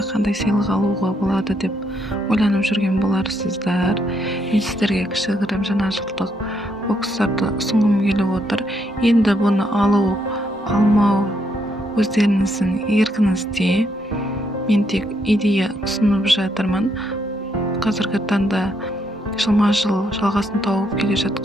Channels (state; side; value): normal; both; correlation 0.75